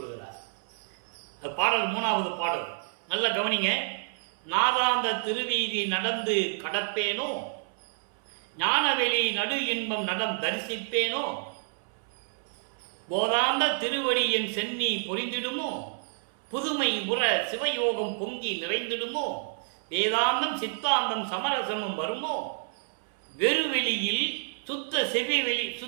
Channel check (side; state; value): left; silent; 59 dB below the other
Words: அது பாடல் 3வது பாடல். நல்ல கவனிங்க. நாதாந்த திருவீதி நடந்து கடப்பேனோ, ஞானவெளி நடு இன்பம் நடம் தரிசிப்பேனோ, போதாந்த திருவடி என் சென்னி பொறிந்திடுமோ, புதுமை உற சிவயோகம் பொங்கி நிறைந்திடுமோ, வேதாந்தம் சித்தாந்தம் சமரசமும் வருமோ, வெறுவெளியில் சுத்த